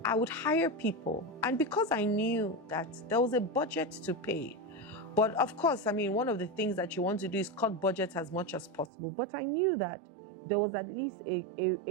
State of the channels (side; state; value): left; drops out; at 8.9 s